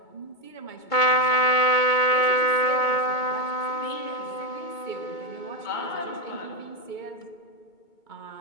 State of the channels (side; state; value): right; late; 2.2 ms